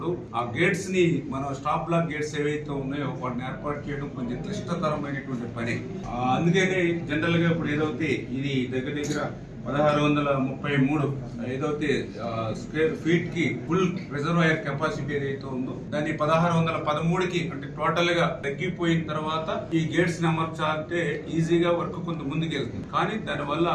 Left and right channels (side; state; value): both; identical; correlation 1.00